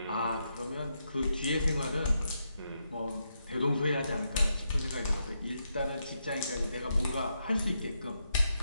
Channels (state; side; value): inverted; both; correlation -0.82